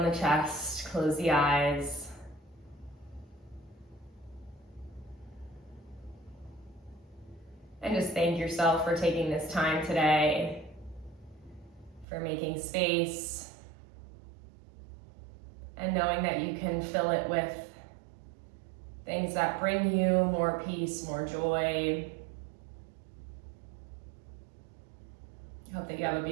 the chest, close the eyes. And just thank yourself for taking this time today, for making space, and knowing that you can fill it with things that bring you more peace, more joy. I hope that you have a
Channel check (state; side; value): drops out; left; at 12.1 s